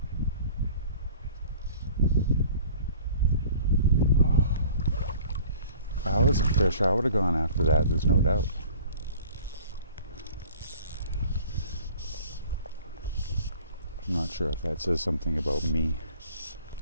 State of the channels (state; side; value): inverted; both; correlation -0.48